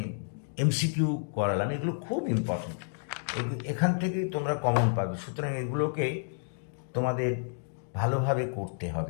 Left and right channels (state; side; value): silent; right; digital silence